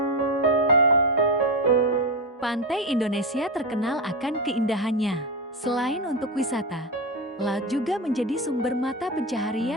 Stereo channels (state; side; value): normal; both; correlation 0.13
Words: Pantai Indonesia terkenal akan keindahannya. Selain untuk wisata, laut juga menjadi sumber mata